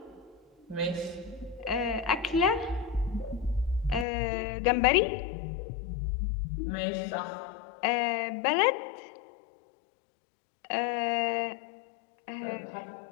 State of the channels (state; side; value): drops out; right; at 4.0 s